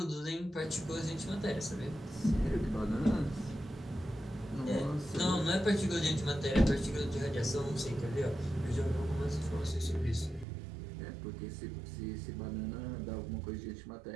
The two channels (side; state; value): left; drops out; at 10.5 s